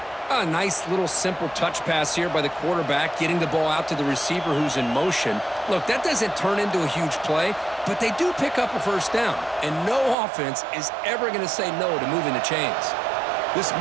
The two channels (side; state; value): left; drops out; at 10.2 s